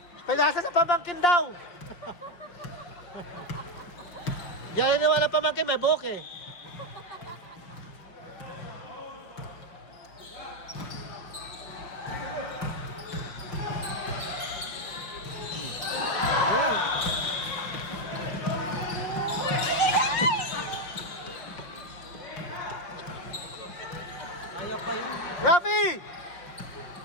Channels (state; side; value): late; right; 5.7 ms